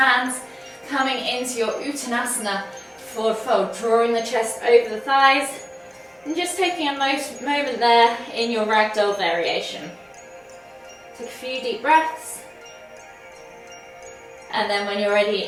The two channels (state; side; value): identical; both; correlation 1.00